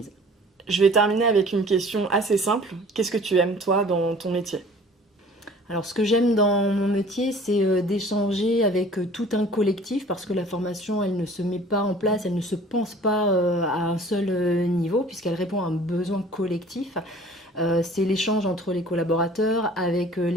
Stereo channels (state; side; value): normal; both; correlation 0.49